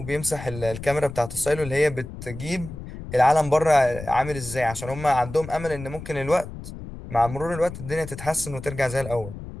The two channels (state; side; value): noise; left; rumble, 11 dB below the sound